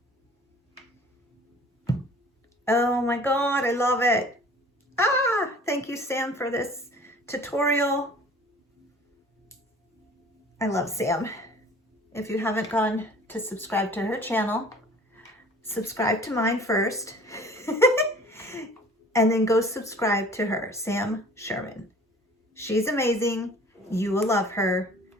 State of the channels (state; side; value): normal; both; correlation 0.48